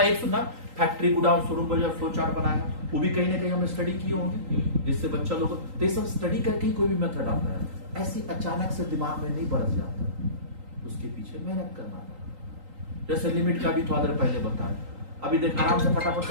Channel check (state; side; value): late; left; 3.8 ms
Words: एक सुनना, फैक्ट्री गोडाउन शोरूम बाजार फ्लो चार्ट बनाया, वो भी कहीं ना कहीं हमने स्टडी किए होंगे, जिससे बच्चा लोग तो सब स्टडी करके ही कोई भी मेथड आता है। ऐसी अचानक से दिमाग में नहीं बरस जाता, उसके पीछे मेहनत करना था। जैसे लिमिट का भी थोड़ा देर पहले बताया, अभी देख आराम से फटाफट